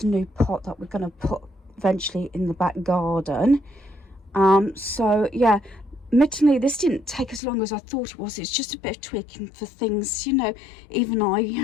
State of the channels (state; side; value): drops out; right; at 7.4 s